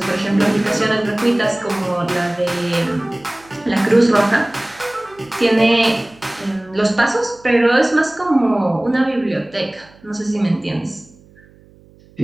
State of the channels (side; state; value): right; noise; hum, 27 dB below the sound